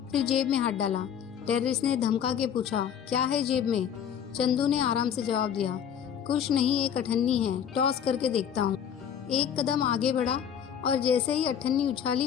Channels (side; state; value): right; quieter; 8.6 dB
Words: फिर जेब में हाथ डाला। टेररिस्ट ने धमका के पूछा, क्या है जेब में? चंदू ने आराम से जवाब दिया, कुछ नहीं, एक अठन्नी है, टॉस करके देखता हूँ। एक कदम आगे बढ़ा और जैसे ही अठन्नी उछाली